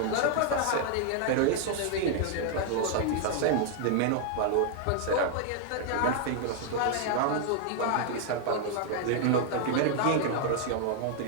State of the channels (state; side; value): different; both; correlation 0.00